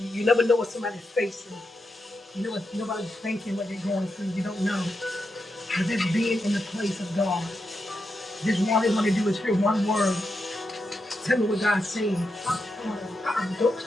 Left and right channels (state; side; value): normal; both; correlation 0.85